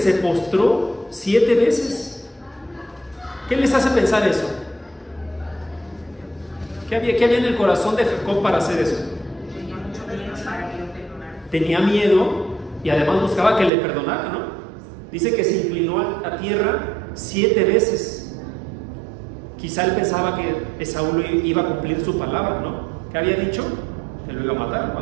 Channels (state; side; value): drops out; left; at 13.7 s